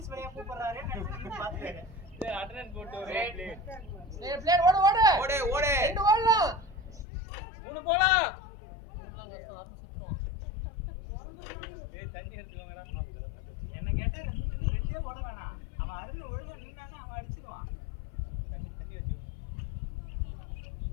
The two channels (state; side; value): drops out; right; at 7.1 s